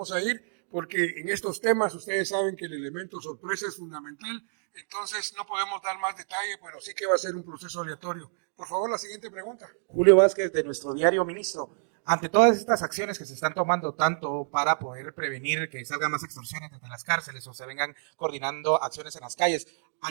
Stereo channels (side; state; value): left; silent; digital silence